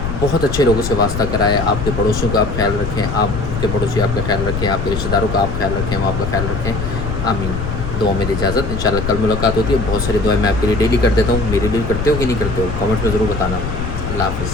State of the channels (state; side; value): noise; left; rumble, 4 dB below the sound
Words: बहुत अच्छे लोगों से वास्ता कराए, आपके पड़ोसियों का आप ख्याल रखें, आपके पड़ोसी आपका ख्याल रखें, आपके रिश्तेदारों का आप ख्याल रखें, वो आपका ख्याल रखें। आमीन। दुआ में इजाज़त, इंशाल्लाह कल मुलाकात होती है। बहुत सारी दुआएं मैं आपके लिए डेली कर देता हूँ, मेरे लिए करते हो कि नहीं करते हो, कमेंट में ज़रूर बताना। अल्लाह